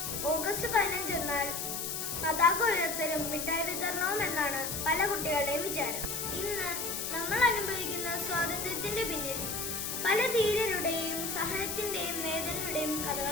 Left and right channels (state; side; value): noise; left; hiss, 3 dB below the sound